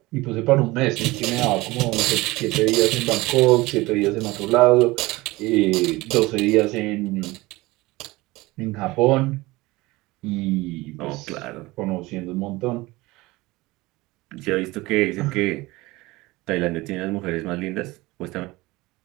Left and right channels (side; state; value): left; quieter; 20.8 dB